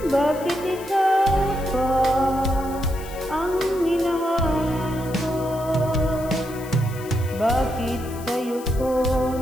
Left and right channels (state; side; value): noise; left; hiss, 18 dB below the sound